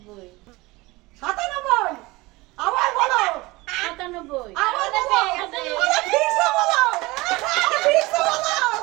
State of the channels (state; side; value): quieter; left; 21.9 dB